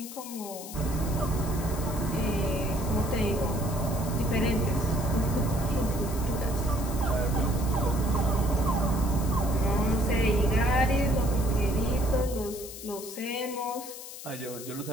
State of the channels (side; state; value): left; noise; hiss, 12 dB below the sound